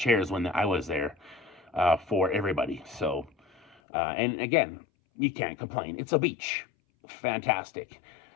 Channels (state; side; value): drops out; right; at 3.8 s